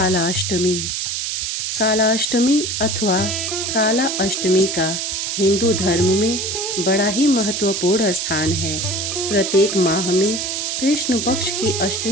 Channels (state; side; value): noise; right; hiss, 2 dB below the sound